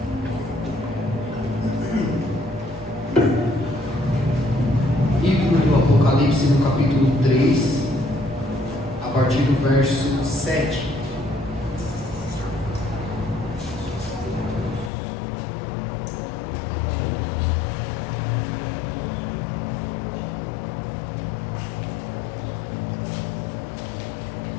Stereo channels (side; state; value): right; drops out; at 14.9 s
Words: Apocalipse no capítulo 3, a partir do verso 7.